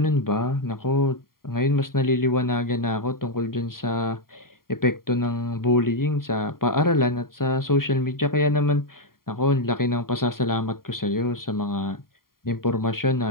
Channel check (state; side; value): late; right; 0.92 ms